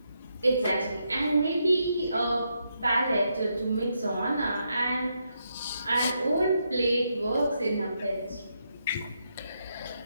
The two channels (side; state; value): both; inverted; correlation -0.81